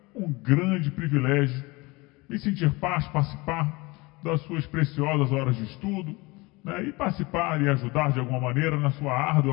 um grande privilégio me sentir participar das suas preciosas horas de estudo, e participar e ajudar de alguma maneira na sua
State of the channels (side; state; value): right; quieter; 24.1 dB